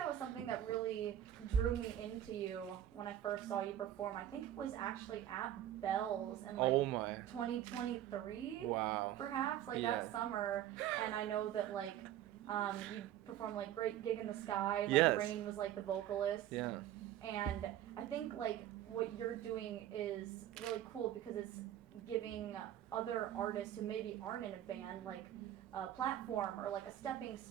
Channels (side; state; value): left; quieter; 11.8 dB